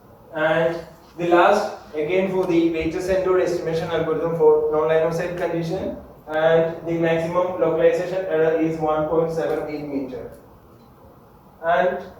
And the last again for the weighted centered estimation algorithm for non-line of sight condition, and the maximum localization error is 1.78 meter. And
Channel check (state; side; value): identical; both; correlation 1.00